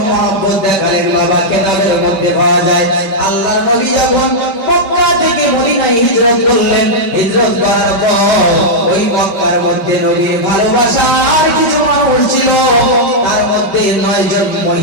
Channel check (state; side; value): late; right; 5.2 ms